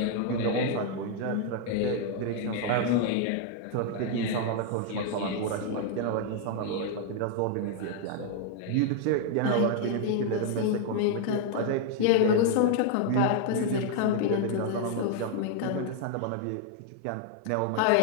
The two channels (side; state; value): both; different; correlation 0.00